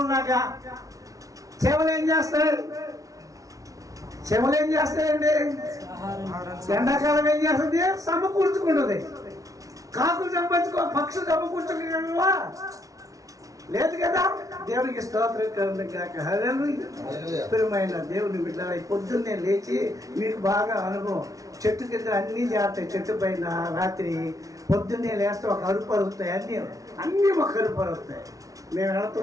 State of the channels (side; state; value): left; late; 0.17 ms